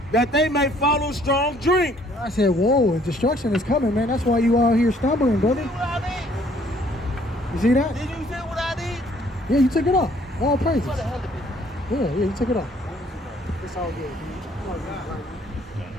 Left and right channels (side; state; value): both; normal; correlation 0.61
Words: that they may follow strong drink. I said, whoa, destruction is coming, man. That's why you out here stumbling, brother. What I You see that? did? Did you say what I did? Yeah, you took it off. All praises. What the hell did it? Yeah, you took it off. It's all good.